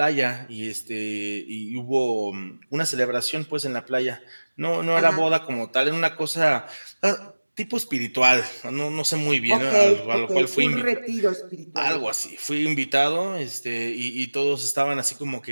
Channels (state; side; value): inverted; both; correlation -1.00